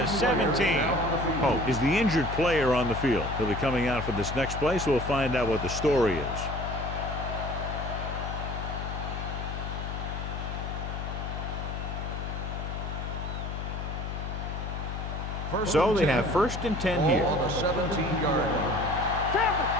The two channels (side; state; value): left; noise; hum, 5 dB below the sound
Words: 17. Pope is the injured player on the field. He'll be coming out for this next play, so we'll find out what the story is. So they have 1st and 10 here. Ball on the 17-yard line. Campbell.